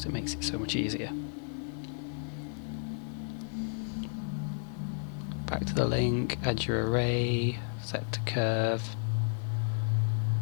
it makes it so much easier. Back to the link, add your array, set to curve,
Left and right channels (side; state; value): right; silent; 56 dB below the other